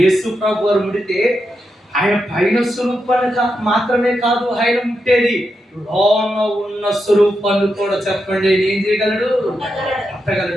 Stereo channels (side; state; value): both; normal; correlation 0.86